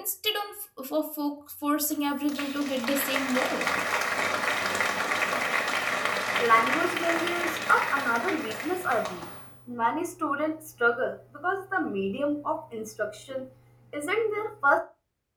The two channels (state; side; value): identical; both; correlation 1.00